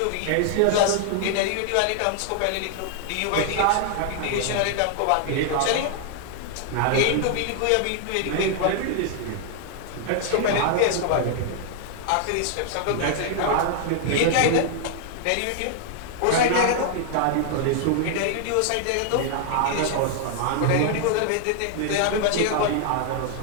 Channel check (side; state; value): both; different; correlation 0.00